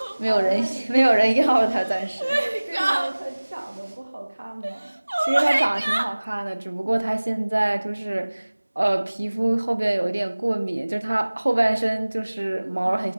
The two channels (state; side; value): inverted; both; correlation -1.00